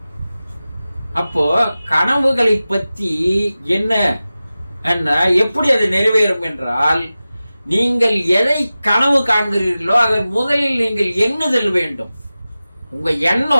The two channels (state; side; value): inverted; both; correlation -0.96